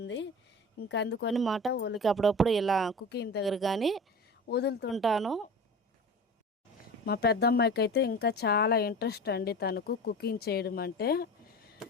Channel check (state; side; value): normal; both; correlation 0.34